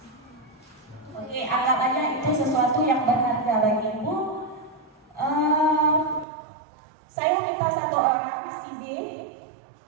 Oke, anggap aja itu sesuatu yang berharga bagi ibu. Saya minta satu orang, si B,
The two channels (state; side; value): drops out; left; at 6.2 s